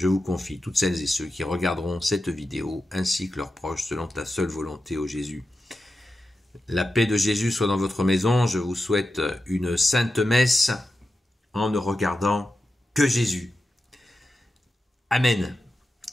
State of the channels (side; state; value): both; normal; correlation 0.91